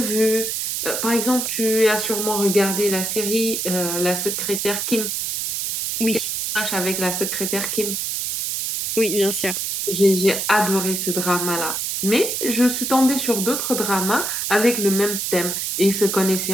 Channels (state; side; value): noise; right; hiss, 2 dB below the sound